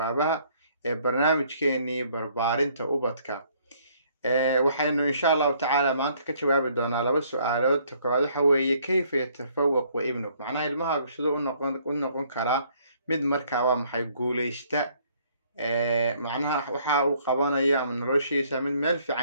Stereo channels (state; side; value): inverted; both; correlation -0.64